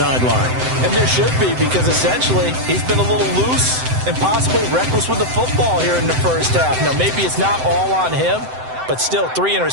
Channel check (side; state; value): left; late; 7.8 ms